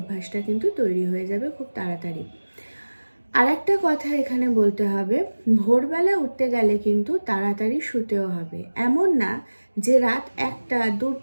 কিন্তু তৈরি হয়ে যাবে খুব তাড়াতাড়ি। আর একটা কথা এখানে বলতে হবে, ভোরবেলা উঠতে গেলে কিন্তু তাড়াতাড়ি শুতেও হবে। এমন না যে রাত 1টা,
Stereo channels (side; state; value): both; inverted; correlation -1.00